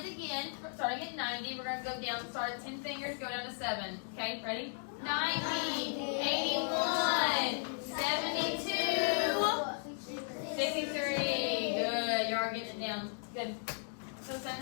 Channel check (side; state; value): right; silent; 54 dB below the other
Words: again. Starting at 90, we're going to go down. Start at 10 fingers, go down to 7. Okay, ready? 90, 81, 72, 63. Good. You are getting it down. Good. So